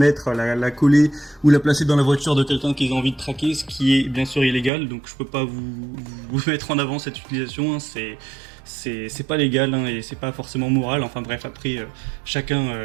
la coller ou la placer dans la voiture de quelqu'un qu'ils ont envie de traquer, ce qui est bien sûr illégal. Donc je peux pas vous mettre en avant cette utilisation, hein. C'est pas légal, hein, et c'est pas forcément moral. Enfin bref, après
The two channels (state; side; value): drops out; left; at 4.7 s